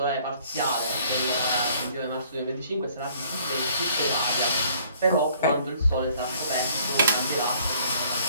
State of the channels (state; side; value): inverted; both; correlation -0.59